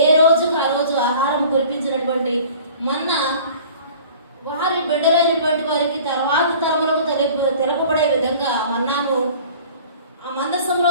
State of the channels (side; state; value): both; inverted; correlation -0.46